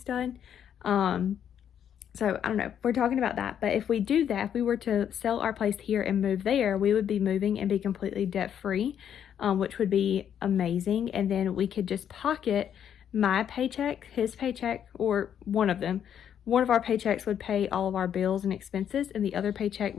done. So I don't know, we're talking about that. But if we do that, if we were to sell our place here and move there, we would be moving and be completely debt free, which would be amazing. And then we could just pocket my paycheck, his paycheck, or one of them. One of our paychecks would pay all of our bills and expenses, and the other paycheck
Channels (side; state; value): right; quieter; 9.1 dB